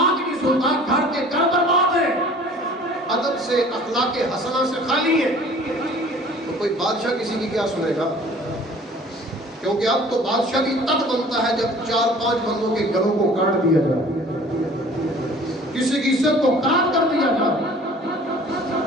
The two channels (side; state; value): both; normal; correlation 0.49